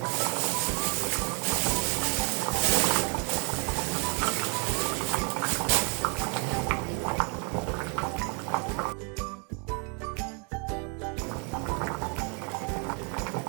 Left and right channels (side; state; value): left; quieter; 35.9 dB